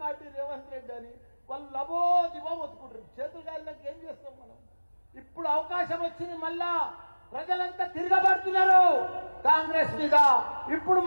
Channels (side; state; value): both; inverted; correlation -1.00